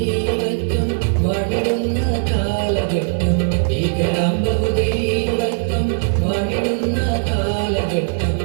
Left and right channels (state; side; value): silent; left; digital silence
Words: വാണിടുന്ന കാലഘട്ടം ഭീകരാം ബഹുദൈവത്വം വാണിടുന്ന കാലഘട്ടം